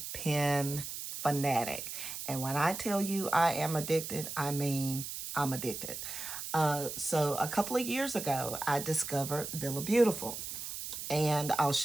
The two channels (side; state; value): right; noise; hiss, 7 dB below the sound